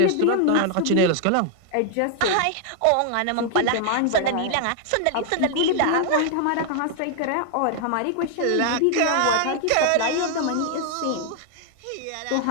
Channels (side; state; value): both; different; correlation 0.00